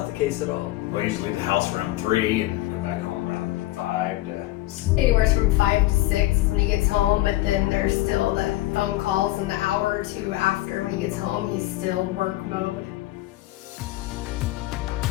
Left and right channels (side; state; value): right; quieter; 17.1 dB